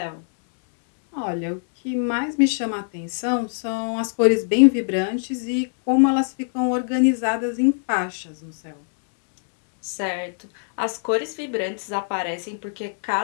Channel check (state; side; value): silent; right; digital silence